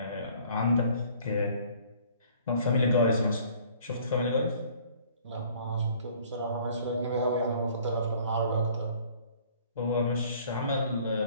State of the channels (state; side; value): inverted; both; correlation -0.55